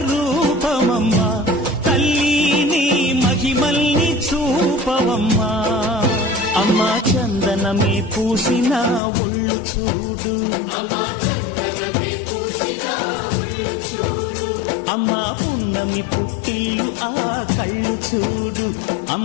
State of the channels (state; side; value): drops out; right; at 9.0 s